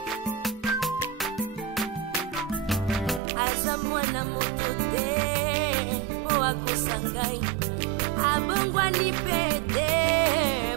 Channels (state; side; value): drops out; left; at 3.2 s